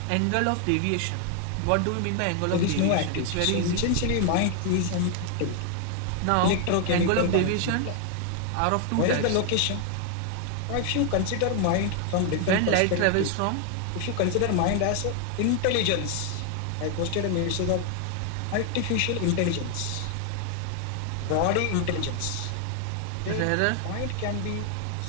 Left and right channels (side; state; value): both; different; correlation 0.00